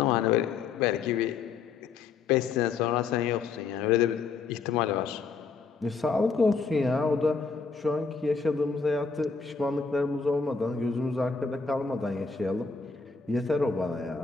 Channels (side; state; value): right; quieter; 5.0 dB